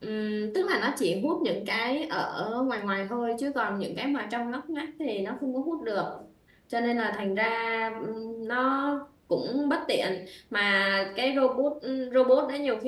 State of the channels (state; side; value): identical; both; correlation 1.00